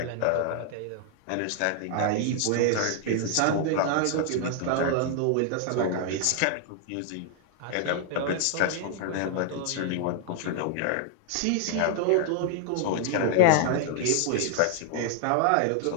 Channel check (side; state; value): both; different; correlation 0.00